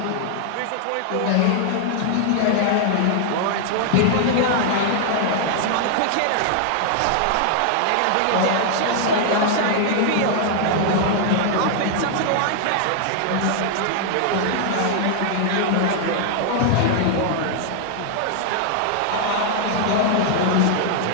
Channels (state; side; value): different; both; correlation 0.00